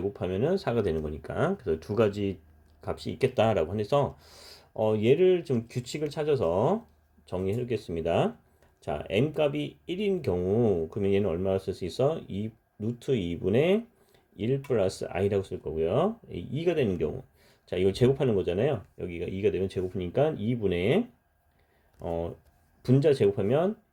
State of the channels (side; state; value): both; identical; correlation 1.00